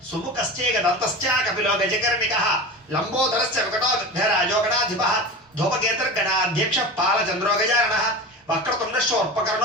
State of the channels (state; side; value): normal; both; correlation 0.30